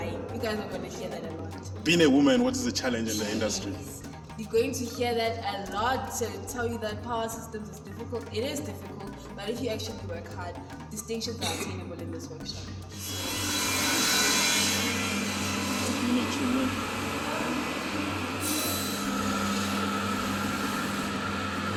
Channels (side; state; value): both; identical; correlation 1.00